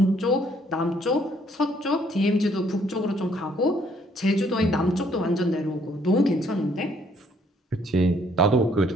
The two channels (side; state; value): both; normal; correlation 0.65